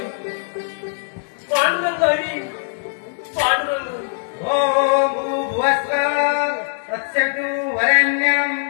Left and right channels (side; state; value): right; silent; digital silence